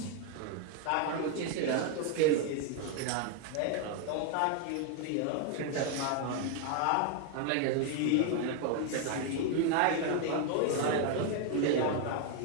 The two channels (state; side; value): different; both; correlation 0.01